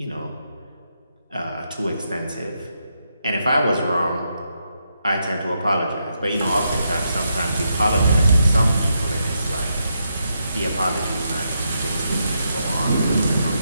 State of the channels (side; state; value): both; inverted; correlation -0.81